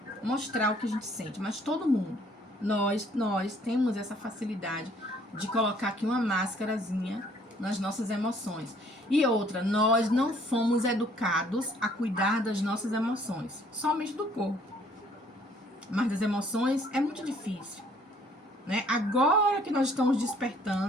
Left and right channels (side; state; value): both; normal; correlation 0.61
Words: mostrar o que a gente sente. Mas todo mundo, nós temos essa facilidade de colocar aqui uma máscarazinha nas nossas emoções. E outra, nós não fomos educados a cuidar das nossas emoções, somente do corpo. Mas das emoções é muito difícil, né? Agora que nós estamos